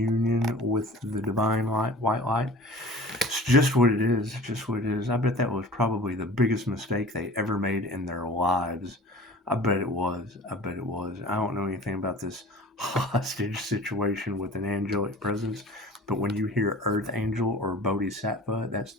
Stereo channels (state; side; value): normal; both; correlation 0.41